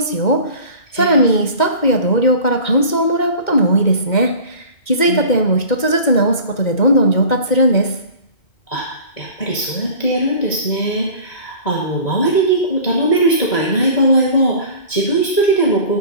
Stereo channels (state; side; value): late; right; 2.1 ms